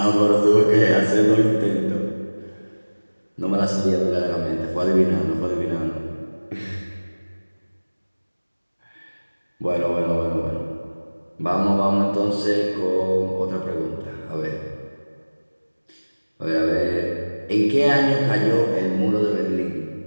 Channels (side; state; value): both; inverted; correlation -1.00